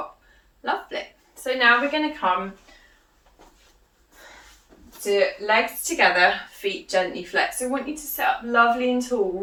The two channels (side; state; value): both; identical; correlation 1.00